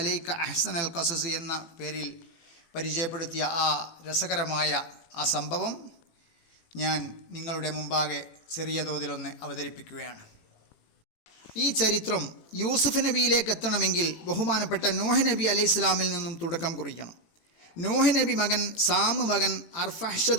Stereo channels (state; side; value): late; right; 18 ms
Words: അഹ്സനൽ ഖസസ് എന്ന പേരിൽ പരിചയപ്പെടുത്തിയ ആ രസകരമായ ആ സംഭവം ഞാൻ നിങ്ങളുടെ മുമ്പാകെ ചെറിയ തോതിലൊന്ന് അവതരിപ്പിക്കുകയാണ്. ഈ ചരിത്രം യൂസുഫ് നബിയിലേക്ക് എത്തണമെങ്കിൽ ബഹുമാനപ്പെട്ട നൂഹ് നബി അലൈഹി ഇസ്ലാമിൽ നിന്നും തുടക്കം കുറിക്കണം. നൂഹ് നബി മകൻ സാമ് മകൻ